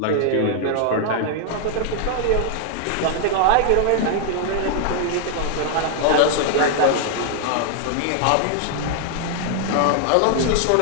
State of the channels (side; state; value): both; different; correlation 0.00